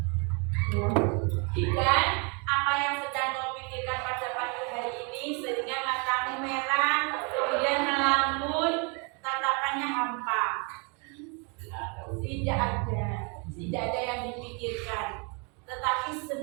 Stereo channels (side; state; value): left; quieter; 34.2 dB